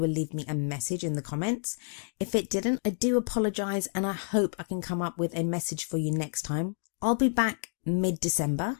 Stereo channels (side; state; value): right; silent; digital silence